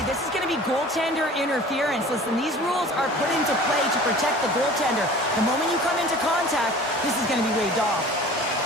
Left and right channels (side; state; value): both; normal; correlation 0.44